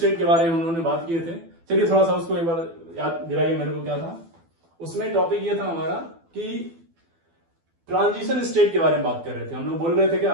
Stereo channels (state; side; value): late; left; 12 ms